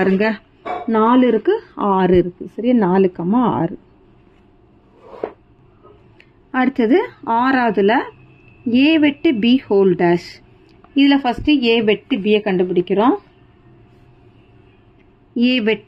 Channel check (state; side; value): identical; both; correlation 1.00